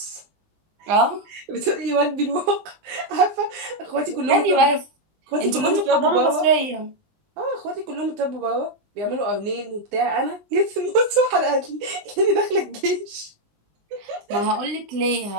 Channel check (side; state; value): left; late; 19 ms